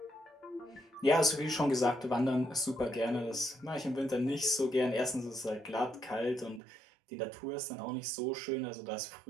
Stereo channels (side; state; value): left; drops out; at 6.6 s